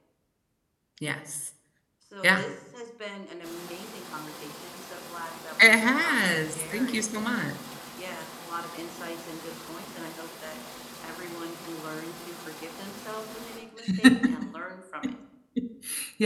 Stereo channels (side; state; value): both; identical; correlation 1.00